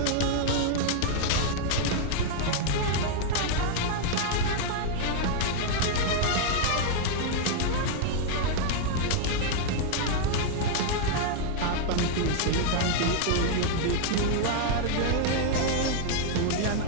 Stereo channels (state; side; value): different; both; correlation -0.01